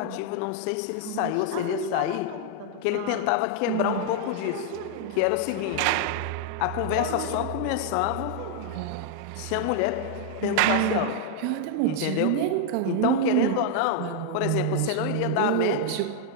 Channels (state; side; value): different; both; correlation 0.00